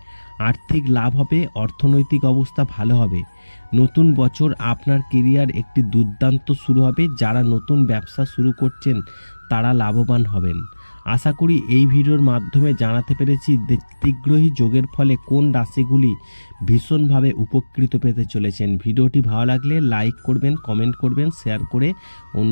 আর্থিক লাভ হবে। অর্থনৈতিক অবস্থা ভালো হবে। নতুন বছর আপনার কেরিয়ার একটি দুর্দান্ত শুরু হবে। যারা নতুন ব্যবসা শুরু করছেন তারা লাভবান হবেন। আশা করি এই ভিডিওর মাধ্যমে জানাতে পেরেছি ত্রিগ্রহী যোগের ফলে কোন রাশিগুলি ভীষণভাবে উপকৃত পেতে চলেছেন। ভিডিওটি ভালো লাগলে লাইক করবেন, কমেন্ট করবেন, শেয়ার করে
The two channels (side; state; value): both; inverted; correlation -1.00